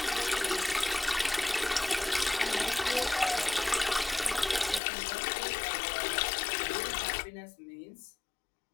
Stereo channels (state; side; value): drops out; right; at 4.8 s